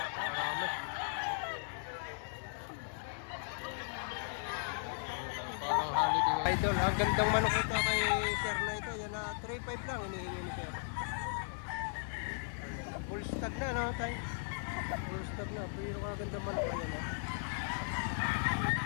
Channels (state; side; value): silent; right; digital silence